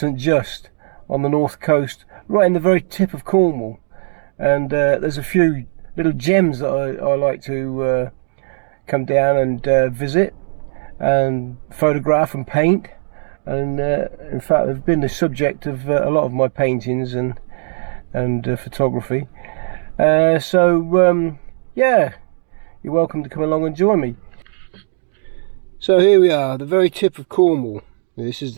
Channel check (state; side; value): silent; left; digital silence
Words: Just on the north coast, right in the very tip of Cornwall. And there's a few little gems that I like to come down and visit and photograph and paint. And in fact, they've been the subject of a lot of my paintings and photography. Yeah, you're welcome to come along and join me. So here we are, the very tip of Cornwall. This